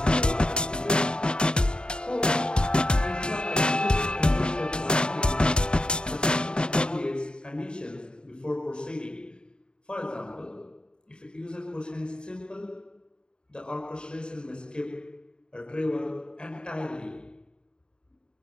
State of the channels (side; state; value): right; late; 0.049 ms